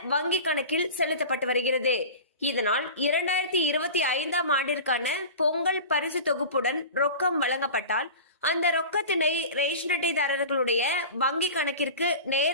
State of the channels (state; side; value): inverted; both; correlation -0.34